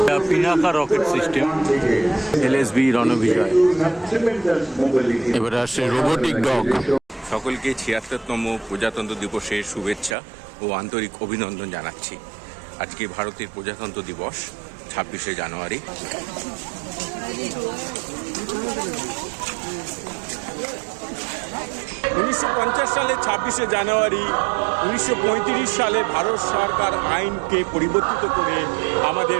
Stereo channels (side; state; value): left; drops out; at 10.2 s